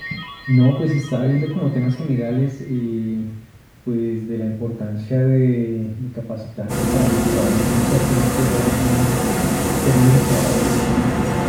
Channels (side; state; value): both; identical; correlation 1.00